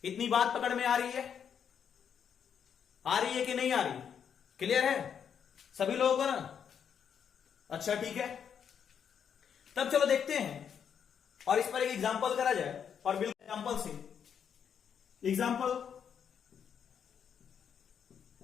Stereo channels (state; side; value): quieter; right; 7.8 dB